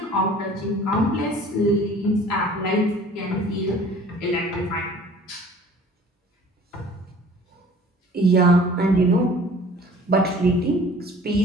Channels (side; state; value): both; normal; correlation 0.49